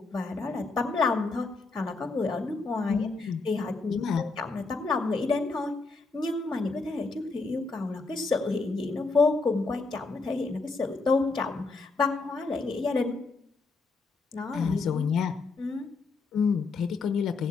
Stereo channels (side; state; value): right; quieter; 3.9 dB